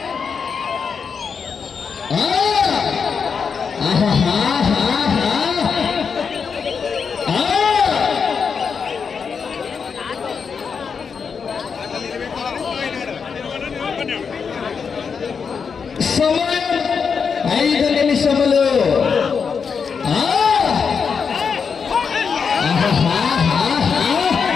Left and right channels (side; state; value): right; quieter; 6.0 dB